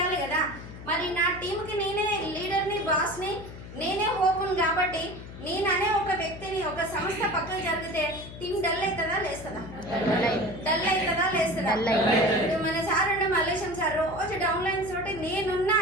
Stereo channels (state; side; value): noise; left; hum, 13 dB below the sound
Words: కదా. మరి నా టీంకి నేనే లీడర్ని, బాస్ని, నేనే హోపును కాబట్టి నేననే ఒక వ్యక్తిని, ఒక సంస్థ పక్కన జరిగితే టీం డల్ అవుతుందా లేస్తుందా? డల్ అవుతుందా లేస్తుందా? మన సార్ ఉండే మల్లేశం సార్ రోజు డౌన్ లైన్స్ తోటి నేనున్నా